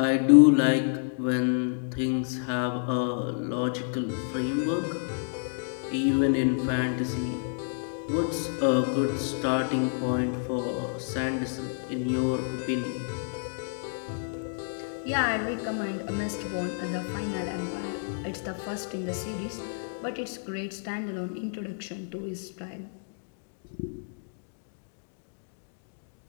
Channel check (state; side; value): silent; right; digital silence